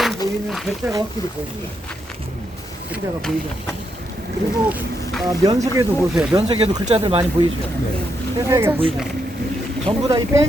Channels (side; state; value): both; normal; correlation 0.80